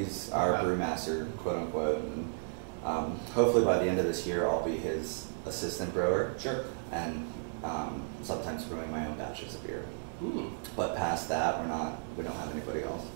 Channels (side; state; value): left; silent; digital silence